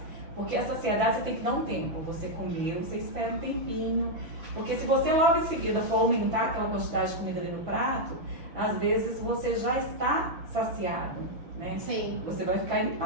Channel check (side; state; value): left; late; 6.1 ms